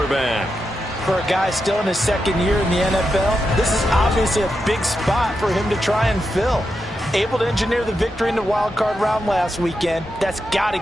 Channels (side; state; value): both; normal; correlation 0.87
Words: For a guy still in his 2nd year in the NFL, this is obviously a big spot for him to try and fill. Able to engineer the victory in the wild card round last weekend. That's got to